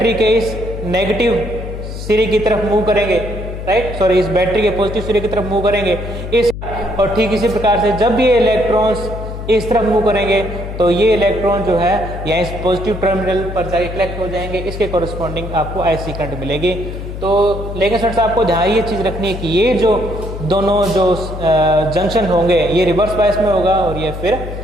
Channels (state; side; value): noise; left; hum, 8 dB below the sound